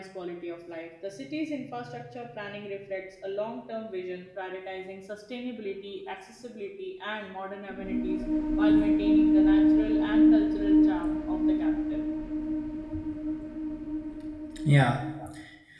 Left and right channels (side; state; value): both; identical; correlation 1.00